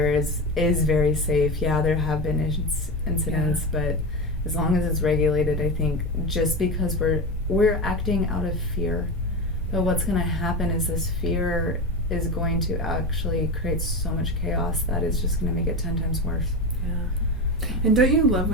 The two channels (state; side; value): normal; both; correlation 0.21